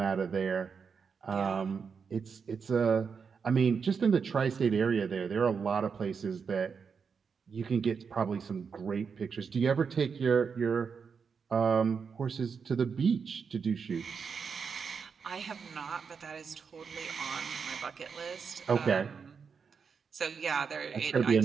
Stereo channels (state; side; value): quieter; left; 6.0 dB